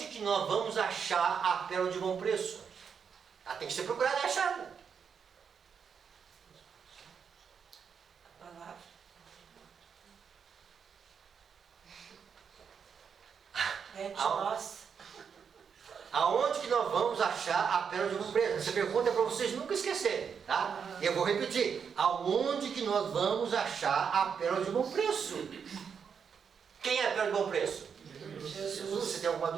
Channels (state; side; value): quieter; left; 6.8 dB